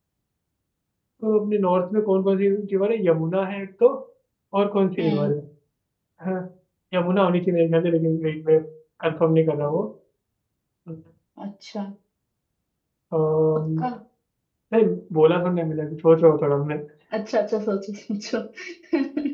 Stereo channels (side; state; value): both; identical; correlation 1.00